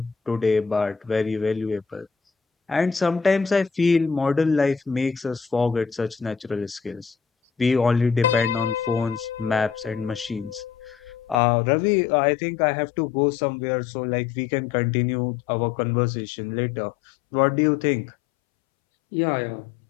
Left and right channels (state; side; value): drops out; right; at 11.4 s